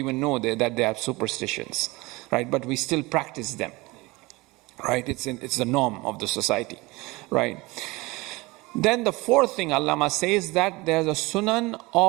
know that they are superstitions, right? But we still practice them, right? It's the norm of the society, right? Then the fourth thing Allama says that there's a sunan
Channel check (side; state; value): left; quieter; 22.8 dB